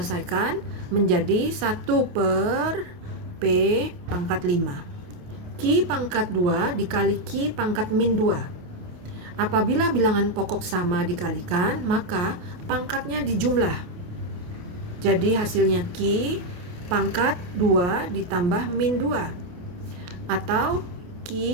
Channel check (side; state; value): left; late; 28 ms